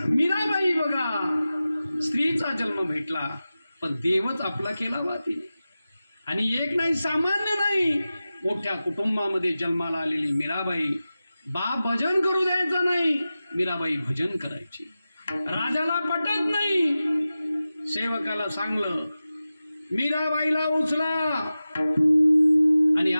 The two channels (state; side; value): inverted; both; correlation -0.95